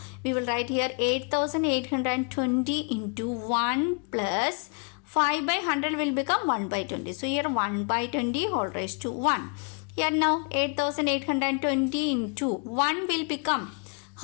we will write here 8,820 into 1 plus 5 by 100 will become 1 by 20. So here 1 by 20 whole raised to 1. Here now 8,820 into 1 will become,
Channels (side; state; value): right; quieter; 38.0 dB